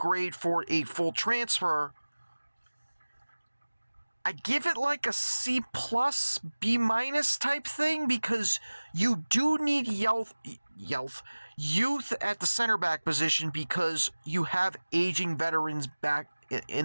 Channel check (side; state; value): both; inverted; correlation -1.00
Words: for a full transfer. I give it like a C+, B- type thing, because you do need youth at the center back position, because you have aging veterans back